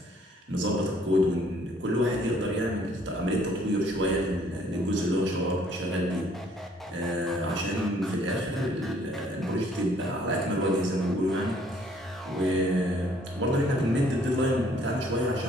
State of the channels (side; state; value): both; normal; correlation 0.61